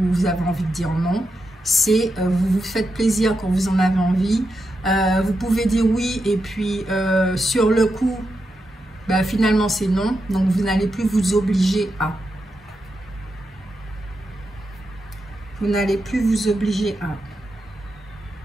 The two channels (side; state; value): both; normal; correlation 0.87